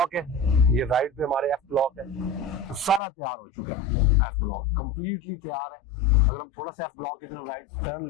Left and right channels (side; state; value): right; drops out; at 3.0 s